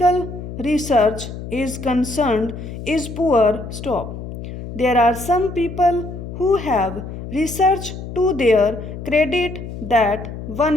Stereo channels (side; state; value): left; noise; hum, 10 dB below the sound